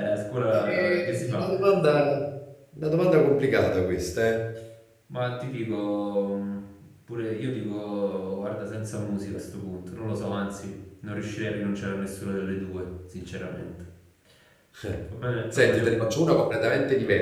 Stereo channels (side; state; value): both; identical; correlation 1.00